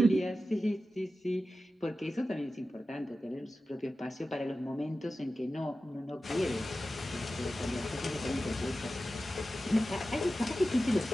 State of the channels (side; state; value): both; normal; correlation 0.93